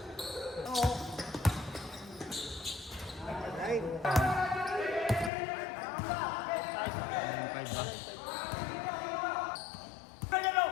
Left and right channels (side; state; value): right; drops out; at 5.3 s